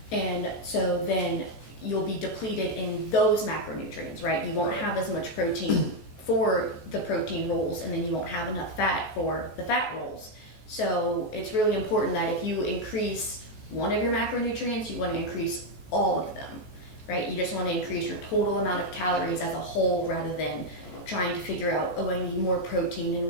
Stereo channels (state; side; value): late; right; 14 ms